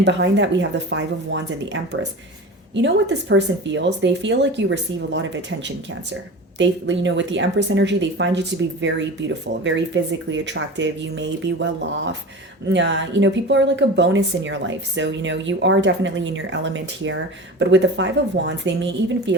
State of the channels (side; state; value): both; normal; correlation 0.33